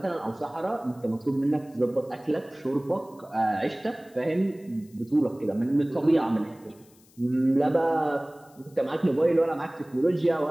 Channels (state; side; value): noise; left; hiss, 29 dB below the sound